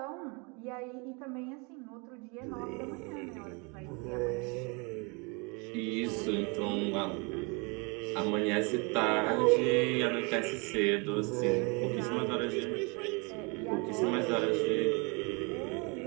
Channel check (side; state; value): left; quieter; 31.2 dB